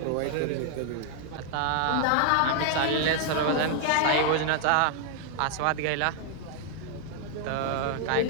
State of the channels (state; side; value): different; both; correlation 0.00